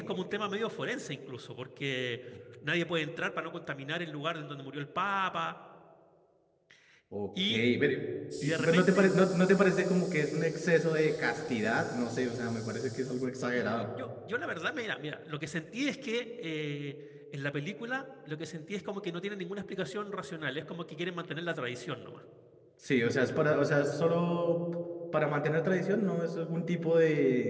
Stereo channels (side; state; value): both; identical; correlation 1.00